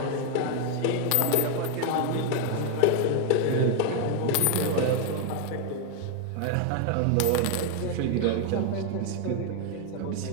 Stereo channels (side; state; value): both; different; correlation 0.00